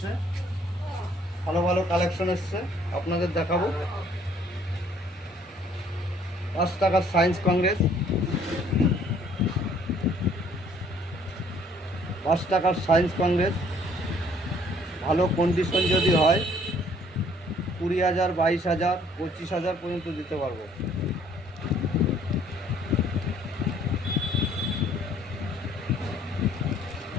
ভালো ভালো কালেকশন এসছে, আপনাদের দেখাবো। 5 টাকার সায়েন্স কংগ্রেস, 5 টাকার সায়েন্স কংগ্রেস ভালো কন্ডিশন যদি হয় 20,000, 22,000, 25,000 পর্যন্ত দিতে পারবো।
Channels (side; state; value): both; normal; correlation 0.60